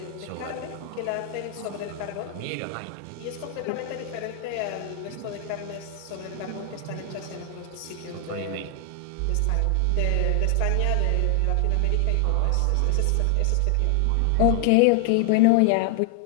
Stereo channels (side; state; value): both; different; correlation 0.00